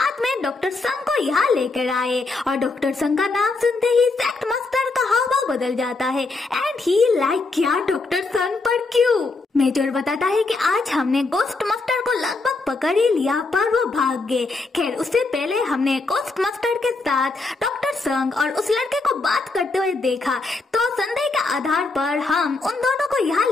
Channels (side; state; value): right; quieter; 3.5 dB